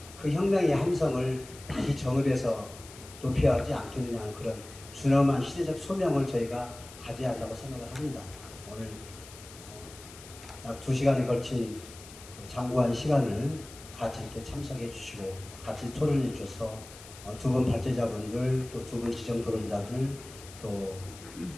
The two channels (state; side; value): noise; left; hiss, 17 dB below the sound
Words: 그 혁명의 함성을 다시 정읍에서 높여야 하지 않겠느냐는 그런 준엄한 시대적 소명을 저희가 가져야 한다고 생각을 합니다. 오늘 약 2시간에 걸친 장구한 시간을 같이 이렇게 참석해 주시고 같이 토론해 주셔서 두 분 발제자분들 또 두 분 지정 토론자들 또